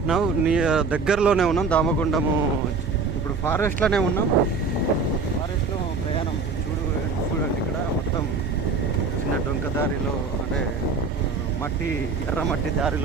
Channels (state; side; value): quieter; left; 4.6 dB